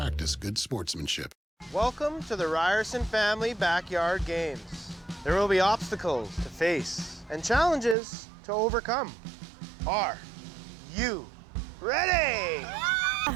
good sportsmanship. Welcome to the Ryerson Family Backyard Games. There will be obstacles to face and challenges to overcome. Are you ready? The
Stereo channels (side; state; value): left; drops out; at 8.0 s